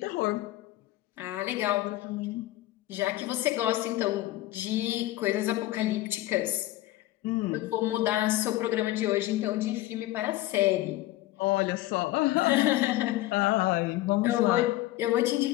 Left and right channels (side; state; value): right; quieter; 16.5 dB